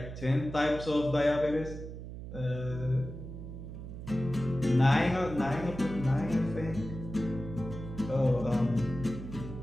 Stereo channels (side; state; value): right; noise; hum, 10 dB below the sound